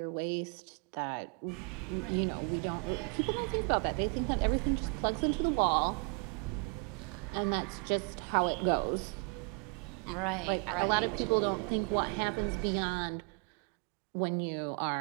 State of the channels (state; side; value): quieter; left; 34.4 dB